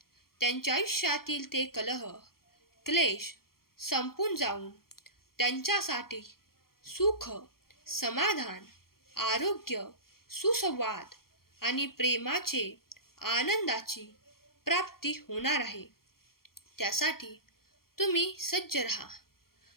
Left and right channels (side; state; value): right; late; 0.93 ms